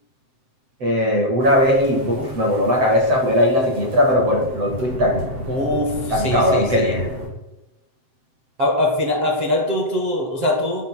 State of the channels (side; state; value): left; late; 7.8 ms